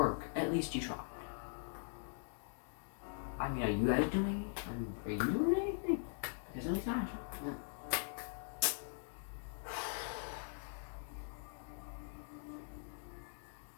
at least you tried. I mean, are you guys doing it? Are you doing anything? Because at least I tried.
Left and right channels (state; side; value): silent; right; digital silence